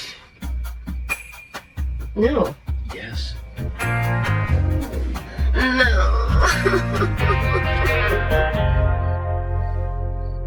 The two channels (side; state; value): both; identical; correlation 1.00